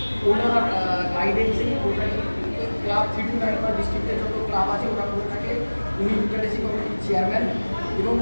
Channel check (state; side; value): inverted; both; correlation -1.00